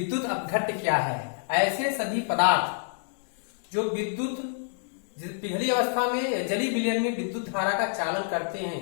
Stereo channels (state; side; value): silent; right; digital silence